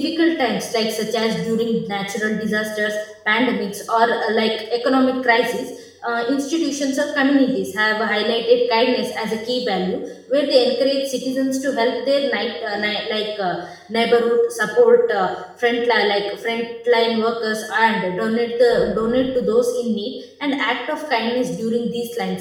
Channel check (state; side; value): identical; both; correlation 1.00